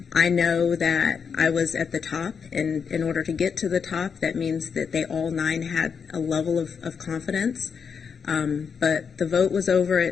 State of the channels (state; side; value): quieter; right; 6.3 dB